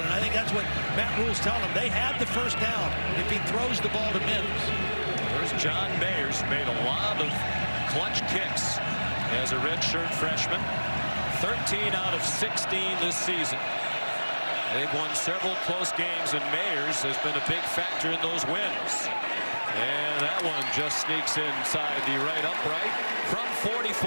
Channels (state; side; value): inverted; both; correlation -1.00